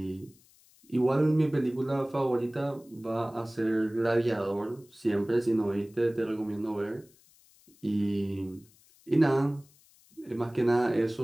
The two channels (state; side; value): noise; left; hiss, 29 dB below the sound